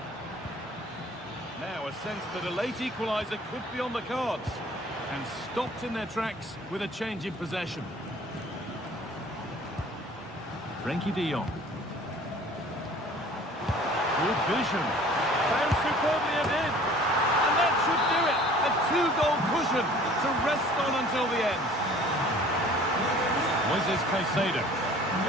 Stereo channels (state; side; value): normal; both; correlation 0.49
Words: Now a sense that a late equaliser could be on the cards. And stopped in their tracks with a change in possession. Frenkie de Jong. Good vision. Found superbly ahead. And that should do it. A two-goal cushion to rest on until the end. Moises Caicedo.